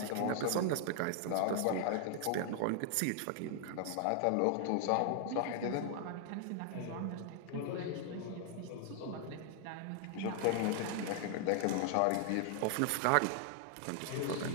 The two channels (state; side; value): different; both; correlation 0.00